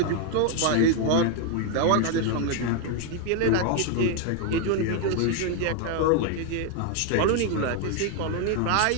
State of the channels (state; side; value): different; both; correlation 0.01